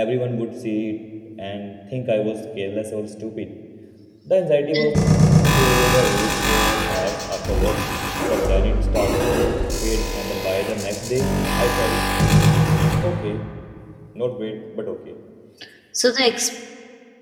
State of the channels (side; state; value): both; identical; correlation 1.00